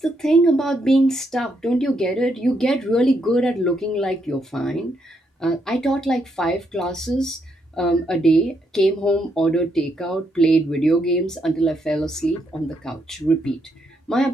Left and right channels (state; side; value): normal; both; correlation 0.77